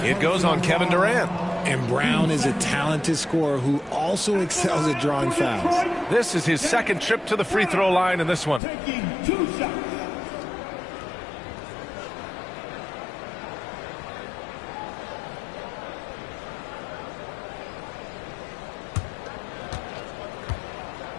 It goes on Kevin Durant. And Brown is a talented scorer who also excels at drawing fouls. This is his second trip to the free throw line in this one. Taking 2 shots.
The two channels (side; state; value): right; drops out; at 8.6 s